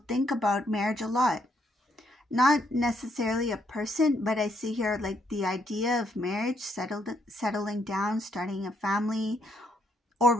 think about marriage a lot. Not necessarily a person, but I see here like the idea of marriage, settling down, starting a family, or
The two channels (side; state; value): both; normal; correlation 0.73